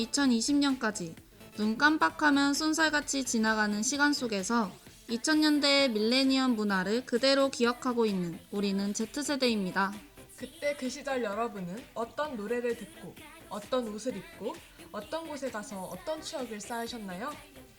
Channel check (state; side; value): identical; both; correlation 1.00